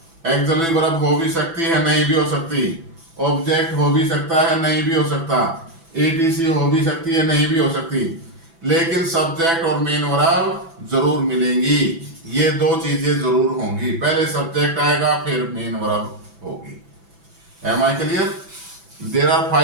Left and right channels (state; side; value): late; left; 6.0 ms